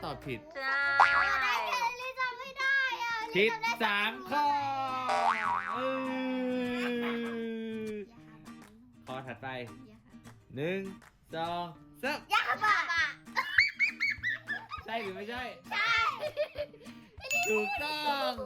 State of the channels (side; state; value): both; identical; correlation 1.00